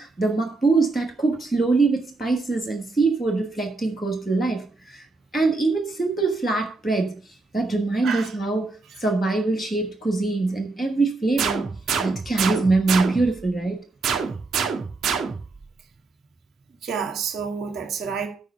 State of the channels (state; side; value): quieter; left; 3.4 dB